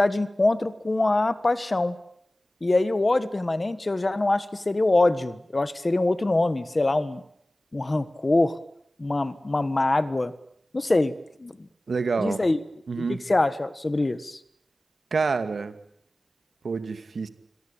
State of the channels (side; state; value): both; normal; correlation 0.97